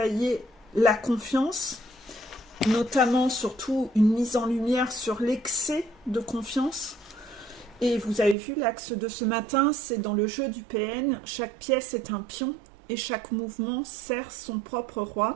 la confiance, notamment surtout une mise en lumière sur l'excès de confiance. Et vous avez vu l'axe de ce matin, c'est dans le jeu du PN, chaque pièce est un pion et chaque mouvement sert son propre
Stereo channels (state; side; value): drops out; left; at 8.3 s